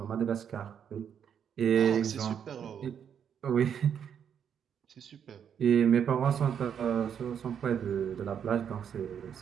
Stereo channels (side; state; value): left; quieter; 8.2 dB